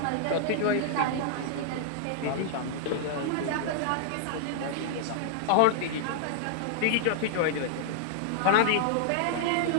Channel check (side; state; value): both; different; correlation -0.01